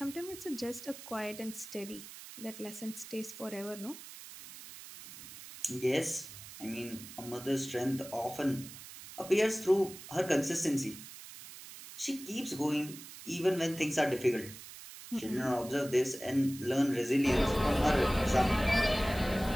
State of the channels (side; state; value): right; noise; hiss, 14 dB below the sound